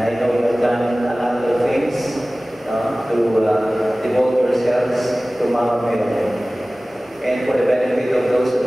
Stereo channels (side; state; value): both; normal; correlation 0.98